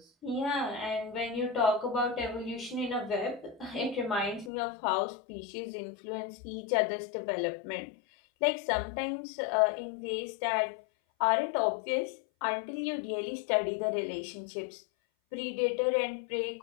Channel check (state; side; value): drops out; right; at 4.5 s